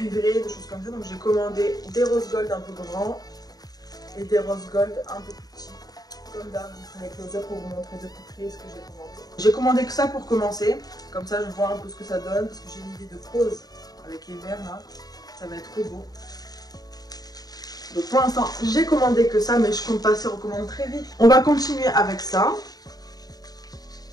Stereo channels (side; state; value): right; late; 0.18 ms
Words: des choses comme ça. Donc j'ai commandé des rose gold un peu grands et des rose gold un peu plus petits. Comme d'hab, je ferai close up pour vous montrer de plus près ce que j'ai commandé. J'ai commandé que ça pour commencer. Comme ça je vois un peu ce que ça donne parce que j'ai une idée de pose avec les verres là. Ça va être trop beau. Donc pour l'instant j'ai commandé que ça mais je compte passer aux commandes très vite. On va continuer avec ça.